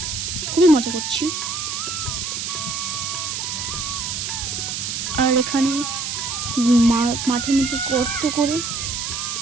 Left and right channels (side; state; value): right; noise; hiss, 3 dB below the sound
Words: খুবই মজা করছি। আর এখানে মাঠের মধ্যে গর্ত করে